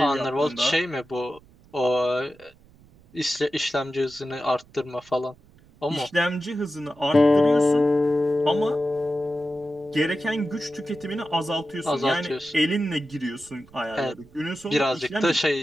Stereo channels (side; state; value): right; noise; rumble, 27 dB below the sound